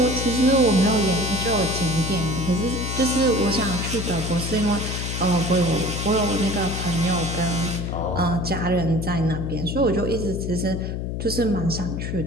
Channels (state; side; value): noise; left; hum, 4 dB below the sound